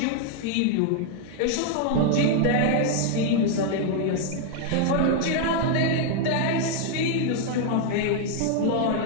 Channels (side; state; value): both; different; correlation 0.00